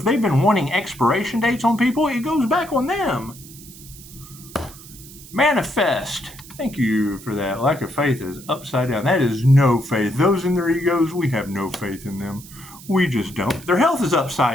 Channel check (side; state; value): right; noise; hiss, 18 dB below the sound